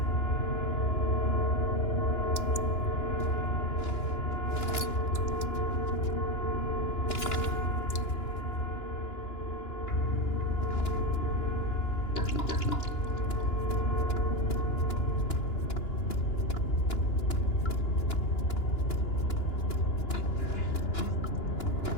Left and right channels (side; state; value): right; late; 2.9 ms